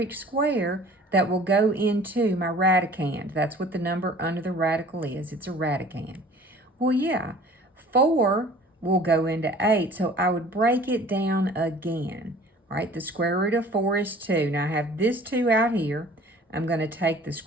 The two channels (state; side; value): normal; both; correlation 0.48